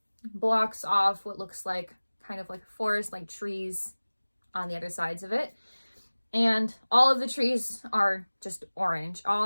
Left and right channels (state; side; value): inverted; both; correlation -1.00